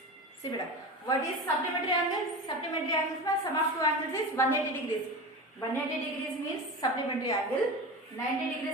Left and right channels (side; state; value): both; normal; correlation 0.27